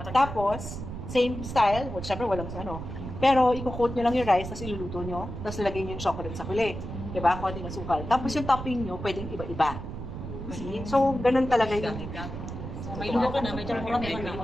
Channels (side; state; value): right; noise; rumble, 8 dB below the sound